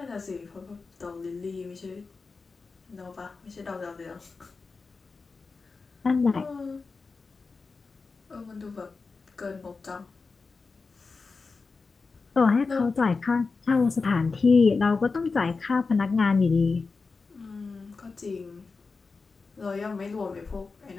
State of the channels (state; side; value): quieter; right; 4.3 dB